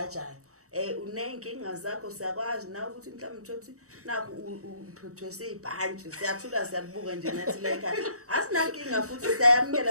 unenkinga zakho siyakwazi nawe ukuthi mhlawumbe uthothi naku uphethwe sibhantshi siyathula siyabuka nje ngathi leka asinankinga futhi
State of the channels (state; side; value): late; left; 0.65 ms